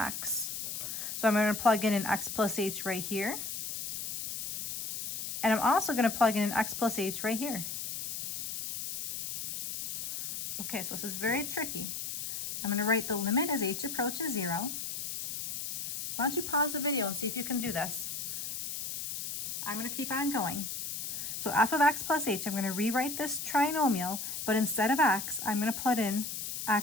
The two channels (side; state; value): left; noise; hiss, 5 dB below the sound